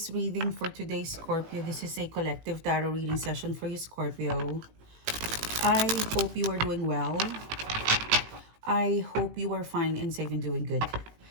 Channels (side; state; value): left; late; 18 ms